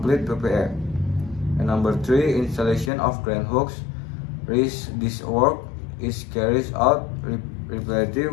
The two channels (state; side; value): drops out; right; at 2.9 s